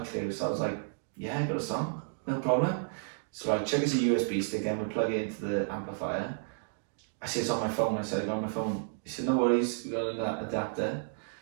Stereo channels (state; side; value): silent; left; digital silence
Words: clue. So I was like, yeah, I got a song, no problem. So I check it's a USB stick and we plug it into the amplifier. I see it's on my phone. I said, I got on my phone. He said, no worries, we got an adapter.